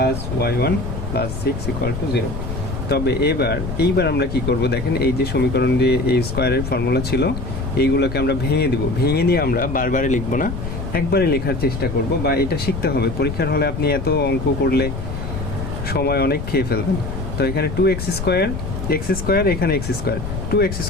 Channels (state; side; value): noise; left; rumble, 6 dB below the sound